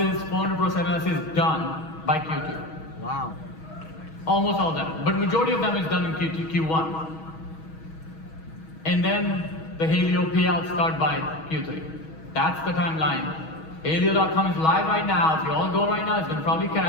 400 plus MLSs done by Q2. Wow. Almost all of them. But majority of them is done in Q1. And then the Helio payouts start by Q3. That's the timeline. Helio.com is live right now. If you all go right now, it's going to probably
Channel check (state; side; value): late; right; 6.3 ms